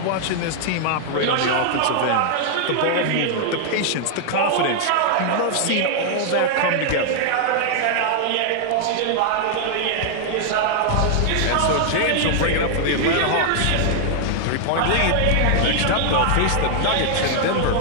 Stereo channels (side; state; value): both; different; correlation 0.00